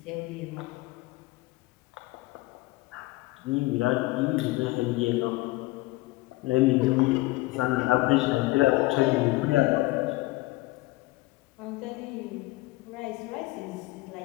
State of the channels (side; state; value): right; quieter; 20.6 dB